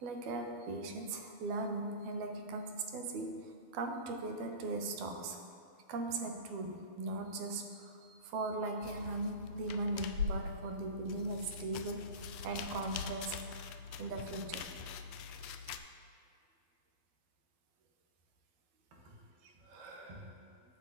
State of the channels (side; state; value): left; late; 12 ms